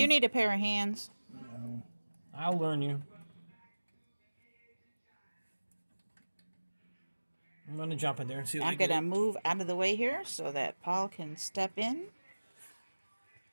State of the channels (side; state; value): both; inverted; correlation -1.00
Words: you need a pair of hands? No. I'll learn you. I'm going to jump in there and see what I'm going to move out of the way here so that Paul can step in.